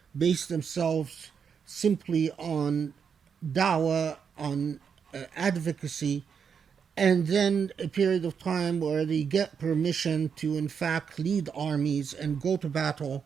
base themselves simply on da'wah, on advocacy, and then a period of time where they get permission to in fact lead armies and go to battle.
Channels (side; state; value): left; quieter; 6.7 dB